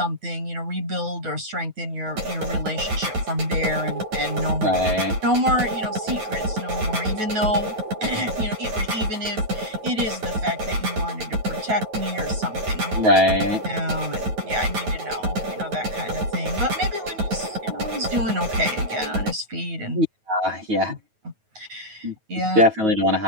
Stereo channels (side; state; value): left; late; 9.3 ms